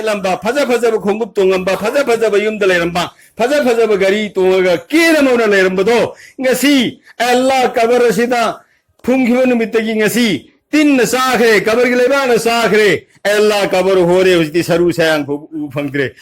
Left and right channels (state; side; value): identical; both; correlation 1.00